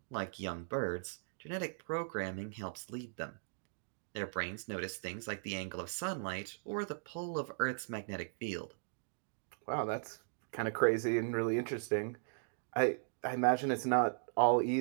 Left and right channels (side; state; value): left; silent; digital silence